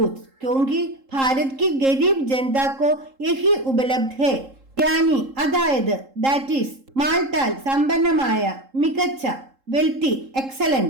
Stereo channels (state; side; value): late; left; 3.7 ms